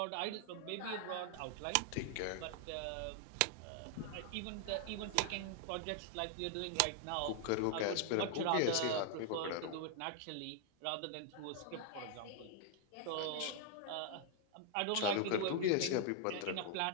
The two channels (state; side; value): different; both; correlation 0.00